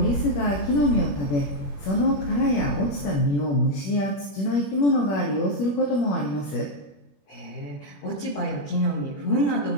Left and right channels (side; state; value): right; late; 21 ms